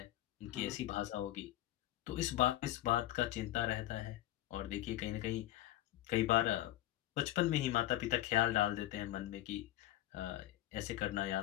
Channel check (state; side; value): quieter; right; 14.6 dB